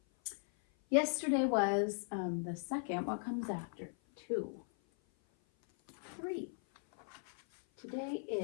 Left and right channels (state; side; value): silent; right; 52 dB below the other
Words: Yesterday was the second. What comes after? 2, 3. Today